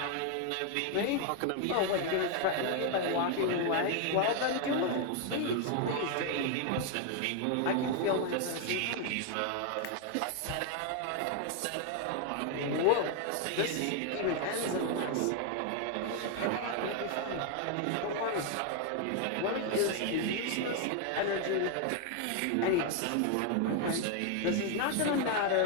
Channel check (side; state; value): both; different; correlation 0.00